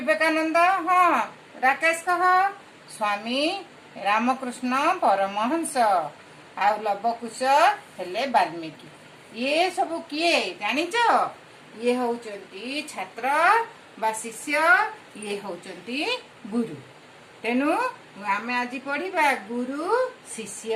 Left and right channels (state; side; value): identical; both; correlation 1.00